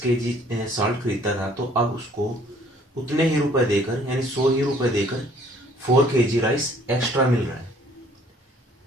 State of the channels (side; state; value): both; normal; correlation 0.58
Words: केजी साल्ट खरीदता था, तो अब उसको उतने ही रुपए देकर यानी 100 ही रुपए देकर 4 केजी राइस एक्स्ट्रा मिल रहा है।